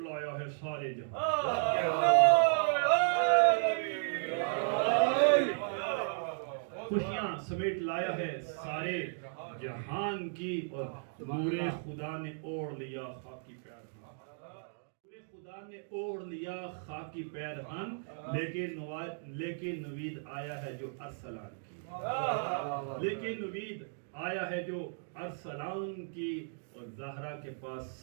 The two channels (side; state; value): left; silent; digital silence